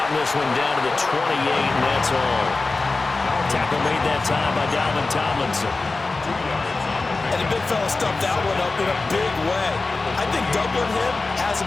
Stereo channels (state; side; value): quieter; right; 3.6 dB